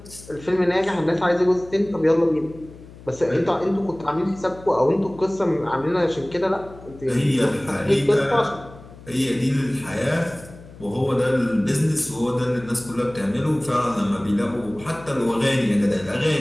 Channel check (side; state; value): left; noise; hum, 19 dB below the sound